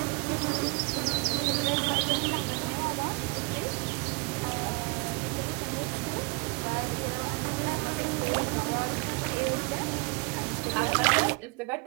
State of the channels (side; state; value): left; quieter; 29.1 dB